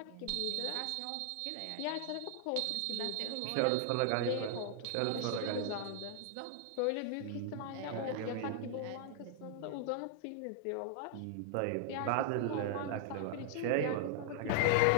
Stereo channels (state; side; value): different; both; correlation 0.00